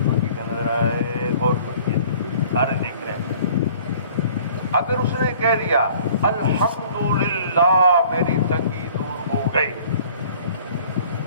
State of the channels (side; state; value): both; inverted; correlation -0.52